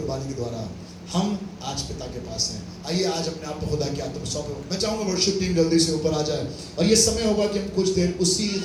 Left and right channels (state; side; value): identical; both; correlation 1.00